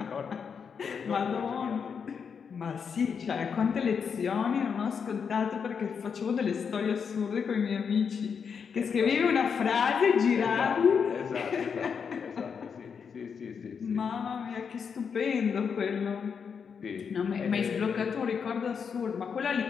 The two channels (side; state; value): right; quieter; 6.5 dB